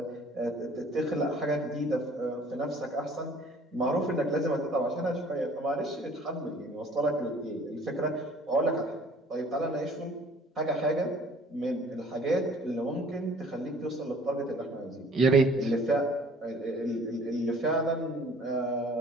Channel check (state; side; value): normal; both; correlation 0.53